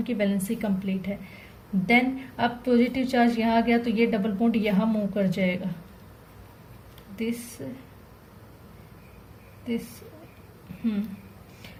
की वैलेंसी कंप्लीट है। देन अब पॉजिटिव चार्ज यहाँ आ गया तो ये डबल बॉन्ड यहाँ मूव कर जाएगा, दिस दिस,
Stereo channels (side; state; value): both; identical; correlation 1.00